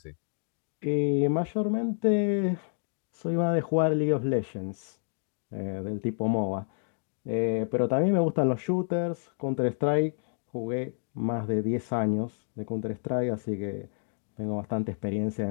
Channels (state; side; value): silent; right; digital silence